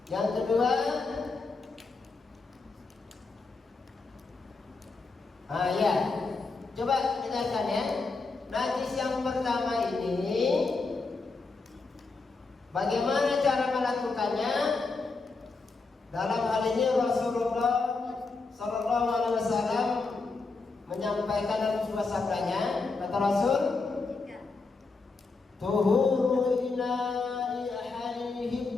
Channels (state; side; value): quieter; right; 4.0 dB